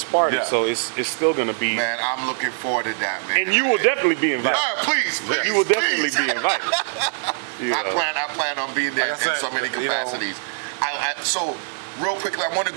party, so it's still going to be. Man, I'm looking forward to that, man. And you will definitely be invited. Please, you will definitely be invited. I plan on being there in so many capacities. So, real quickly, I want to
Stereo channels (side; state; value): left; silent; digital silence